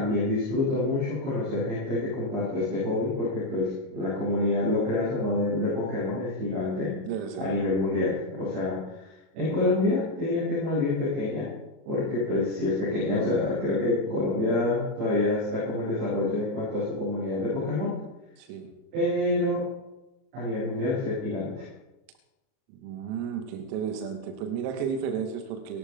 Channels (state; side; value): late; left; 38 ms